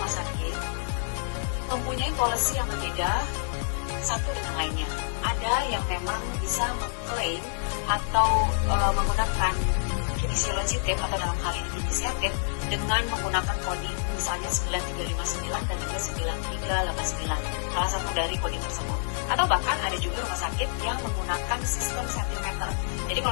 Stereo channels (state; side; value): silent; right; 59 dB below the other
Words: sakit mempunyai policy yang berbeda satu dengan lainnya. Ada yang memang bisa mengklaim atau menggunakan kinesiologi tape atau dalam hal ini inisiatif dengan menggunakan coding misalnya 9359 dan juga 9389, salah satu dari coding tersebut. Atau bahkan ada juga rumah sakit yang menggunakan sistem sentimeter. Jadi